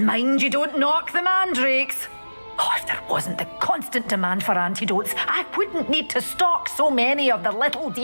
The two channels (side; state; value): both; inverted; correlation -1.00